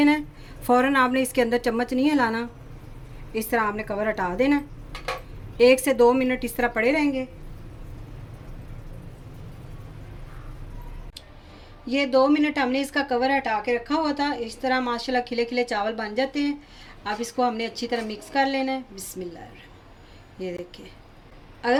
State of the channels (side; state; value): both; identical; correlation 1.00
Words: है। फ़ौरन आपने इसके अंदर चम्मच नहीं हिलाना, इस तरह आपने कवर हटा देना है। 1 से 2 मिनट इस तरह पड़े रहेंगे। ये 2 मिनट हमने इसका कवर हटा के रखा हुआ था। इस तरह माशाल्लाह खिले खिले चावल बन जाते हैं। अब इसको हमने अच्छी तरह मिक्स कर लेना है। बिस्मिल्लाह। ये देखिए,